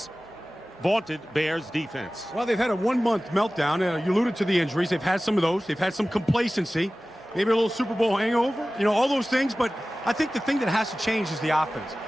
vaunted Bears defense? Well, they've had a one-month meltdown. You alluded to the injuries. They've had some of those. They've had some complacency, maybe a little Super Bowl hangover, you know, all those things. But I think the thing that has to change is the offense.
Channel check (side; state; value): both; normal; correlation 0.97